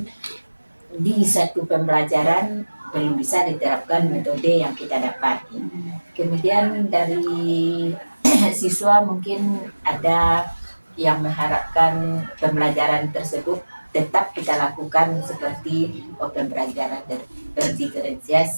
di satu pembelajaran belum bisa diterapkan metode yang kita dapat. Kemudian dari siswa mungkin ada yang mengharapkan pembelajaran tersebut tetap kita lakukan seperti pembelajaran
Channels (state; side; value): inverted; both; correlation -1.00